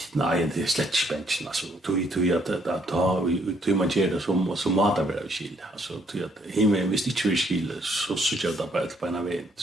det är slett spänsten. Alltså, tog att ta man gör det som matar vara skil. Alltså, tog att himmel, hvis det inte är skil, så syns det bara på en väg.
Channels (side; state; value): both; normal; correlation 0.68